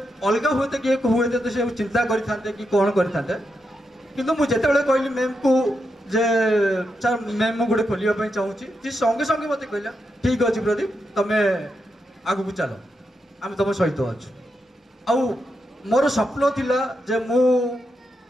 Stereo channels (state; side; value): normal; both; correlation 0.84